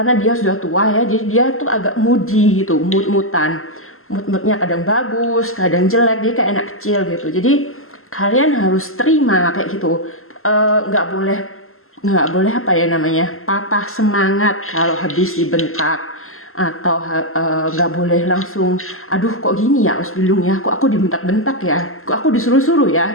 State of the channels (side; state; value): right; late; 0.62 ms